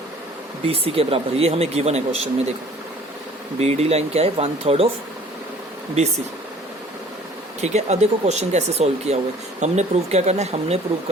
BC के बराबर। ये हमें गिवन है क्वेश्चन में। देखो BD लाइन क्या है, 1/3 ऑफ BC। ठीक है, अब देखो क्वेश्चन कैसे सॉल्व किया हुआ है। हमने प्रूव क्या करना है, हमने प्रूव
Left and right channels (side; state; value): both; normal; correlation 0.52